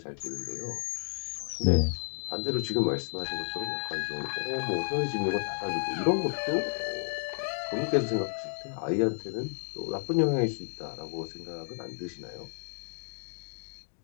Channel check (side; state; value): right; silent; digital silence